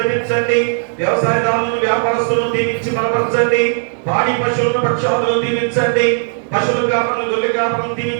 వ్యవసాయదారులను వ్యాపారస్తులను దీవించి బలపరచండి. పాడి పశువులను పక్షాదులను దీవించండి. పశువుల కాపరులను గొర్రెల కాపరులను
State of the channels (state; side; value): silent; left; 69 dB below the other